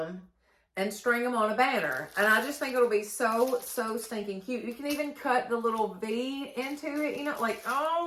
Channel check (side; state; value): both; identical; correlation 1.00